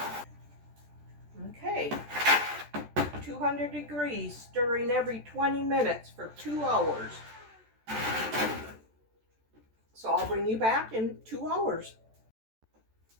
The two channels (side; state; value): left; late; 14 ms